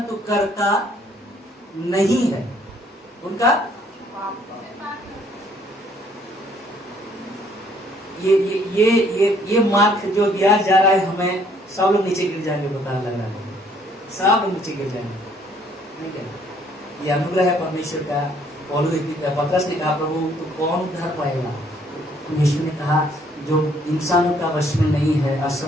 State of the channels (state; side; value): normal; both; correlation 0.63